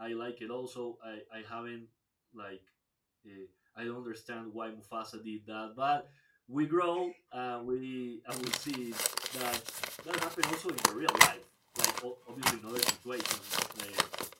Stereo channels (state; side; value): identical; both; correlation 1.00